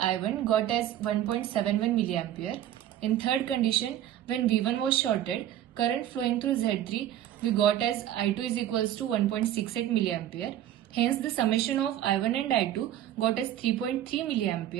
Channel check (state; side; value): quieter; left; 11.9 dB